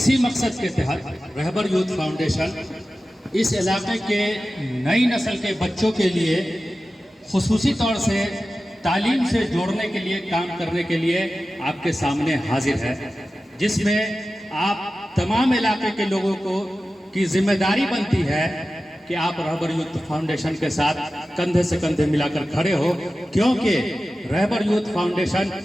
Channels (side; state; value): both; normal; correlation 0.94